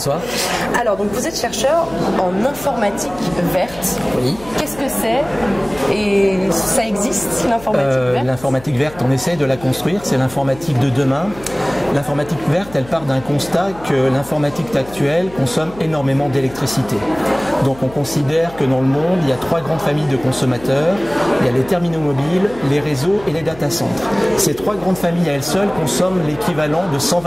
Alors, donc vous êtes chercheur en informatique verte. Oui. Qu'est-ce que c'est et ça existe, l'informatique verte? L'informatique verte, on essaie de la construire, c'est l'informatique de demain. L'informatique verte, elle part d'un constat que l'informatique actuelle consomme énormément d'électricité. Donc on considère que dans le monde, il y a 3 grandes familles de consommateurs. Il y a les terminaux mobiles, les réseaux et les data centers. Ces 3 grandes familles à elles seules consomment l'équivalent de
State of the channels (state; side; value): noise; left; hum, 19 dB below the sound